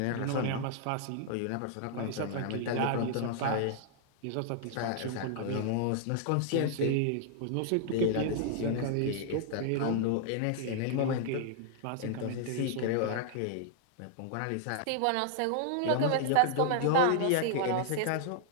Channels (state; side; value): different; both; correlation -0.01